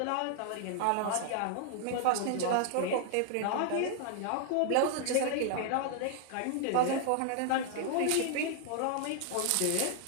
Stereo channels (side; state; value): both; different; correlation -0.01